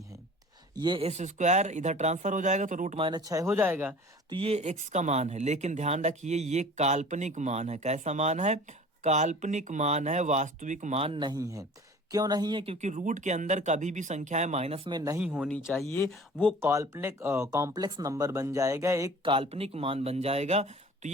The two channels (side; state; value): both; normal; correlation 0.44